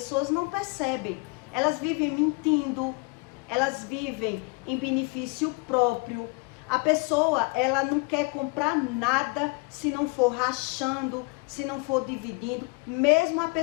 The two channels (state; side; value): quieter; right; 29.3 dB